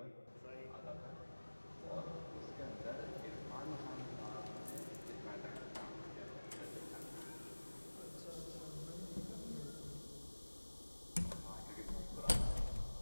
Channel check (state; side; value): inverted; both; correlation -1.00